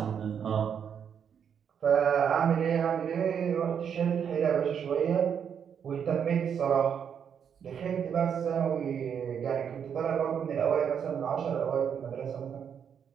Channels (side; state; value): left; quieter; 7.8 dB